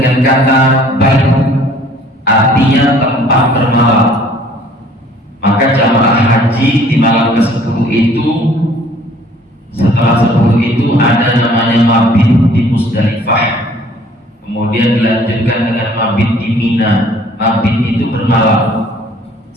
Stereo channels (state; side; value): normal; both; correlation 0.56